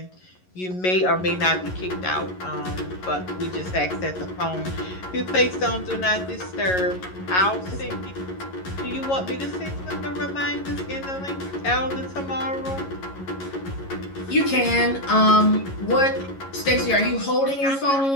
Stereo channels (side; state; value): right; late; 11 ms